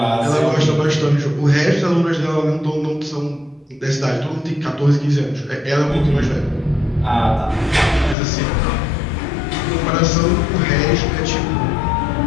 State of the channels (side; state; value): right; drops out; at 8.2 s